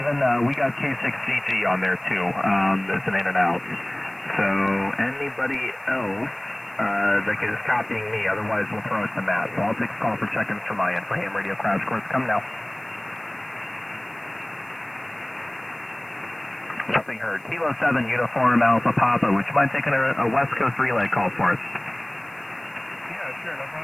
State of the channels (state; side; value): noise; left; hiss, 30 dB below the sound